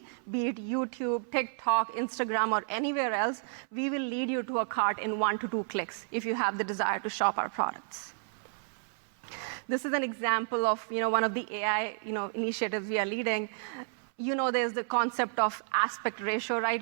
be it YouTube, TikTok, Instagram, or anywhere else, we will lead you to a cart in 1 to 2 clicks if you have the desire to shop our products. This is an example of, one of the AI, initiatives we are leading. There's the concept of aspect ratio, right?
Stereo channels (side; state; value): left; silent; 57 dB below the other